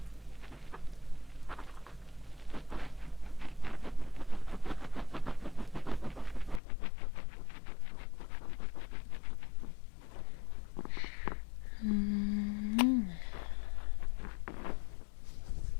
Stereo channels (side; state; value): right; drops out; at 6.6 s